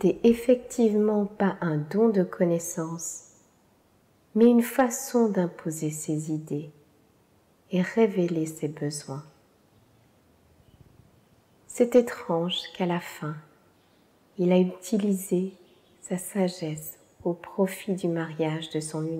effectivement pas un don de connaissance, mais une façon d'imposer ses idées, et révéler ses besoins. C'est étrange qu'à la fin, il a utilisé sa sagesse au profit du mariage de son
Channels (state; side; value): identical; both; correlation 1.00